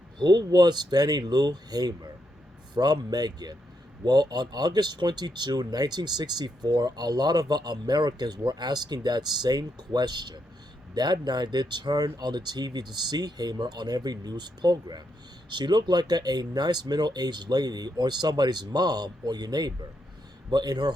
who was Fannie Lou Hamer? From Megan. Well, on August 22, 1964, a lot of Americans were asking that same question. That night, they turned on the TV to see Hamer on every news program. She looked like a nice middle aged lady or somebody's mom or your neighbor. But in her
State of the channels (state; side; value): normal; both; correlation 0.80